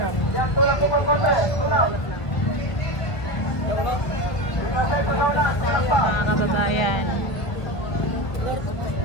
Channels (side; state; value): right; late; 1.7 ms